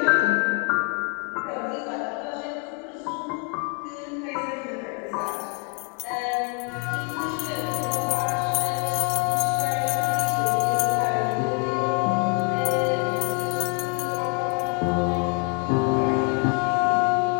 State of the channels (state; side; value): quieter; right; 35.2 dB